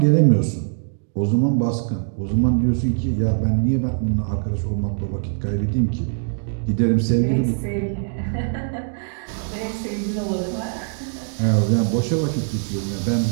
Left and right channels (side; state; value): left; silent; digital silence